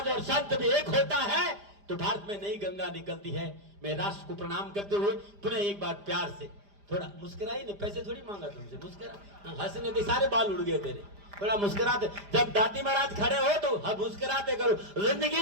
और संत भी एक होता है तो भारत में नई गंगा निकलती है। मैं राष्ट्र को प्रणाम करते हुए पुनः एक बार प्यार से, थोड़ा मुस्कुराई नहीं, पैसे थोड़ी मांगा तुमसे, मुस्कुरा, हंसने के सारे बाल उड़ गए तेरे, थोड़ा मुस्कुराते। जब दादी महाराज खड़े हो तो मुस्कुराते करो। जिंदगी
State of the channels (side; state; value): left; late; 5.0 ms